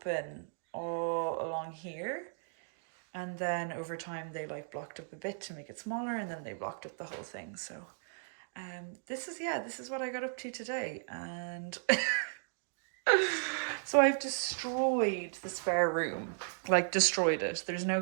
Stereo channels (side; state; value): left; silent; digital silence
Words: all along here. And then over time they like blocked up a bit to make it smaller and then they blocked up the whole thing. So this is what I got up to today. And so I've destroyed the spare room, like destroyed it. There's